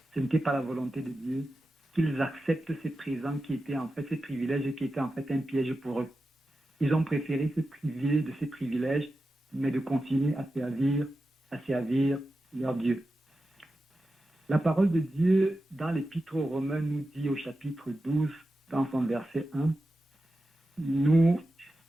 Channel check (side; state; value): both; normal; correlation 0.92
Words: ce n'était pas la volonté de Dieu, qu'ils acceptent ces présents qui étaient en fait ces privilèges qui étaient en fait un piège pour eux. Ils ont préféré se priver de ces privilèges, mais de continuer à servir leur Dieu. La parole de Dieu dans l'Épître aux Romains nous dit au chapitre 12, dans son verset 1, nous